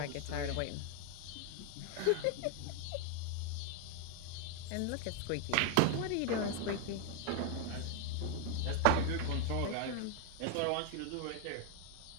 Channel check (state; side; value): different; both; correlation 0.00